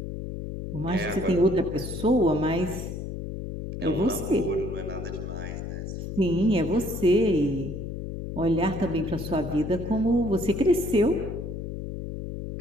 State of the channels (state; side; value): noise; left; hum, 7 dB below the sound